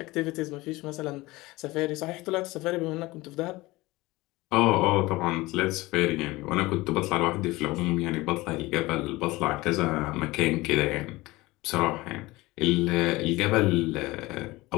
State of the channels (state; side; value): quieter; right; 20.5 dB